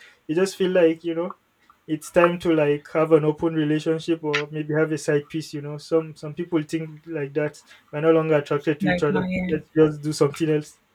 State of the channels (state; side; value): identical; both; correlation 1.00